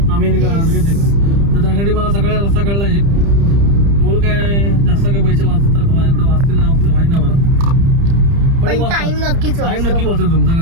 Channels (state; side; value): late; left; 30 ms